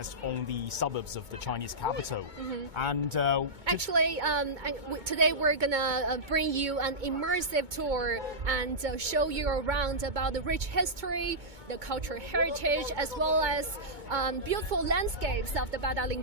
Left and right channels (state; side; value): late; left; 2.2 ms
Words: on the suburbs of the Chinese capital. And actually, today we're gonna bring you an immersive tour and show you around about the rich history, the cultural heritage, as well as beautiful landscapes of the